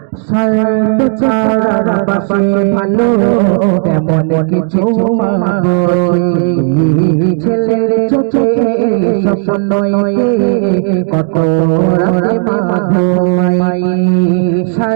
সাইতো ছাড়া বাসে ভালো তেমন কিছু মাগছে ছেলের চোখে স্বপ্ন কত রাতে মা ঘুমাই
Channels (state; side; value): silent; left; 56 dB below the other